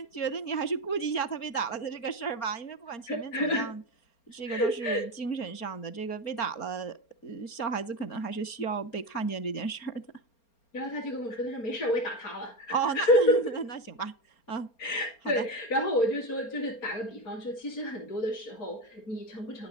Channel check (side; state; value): right; late; 4.3 ms